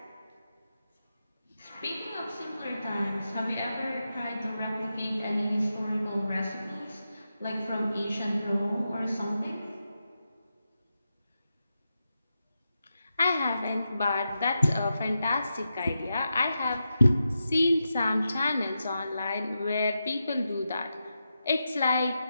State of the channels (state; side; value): inverted; both; correlation -0.89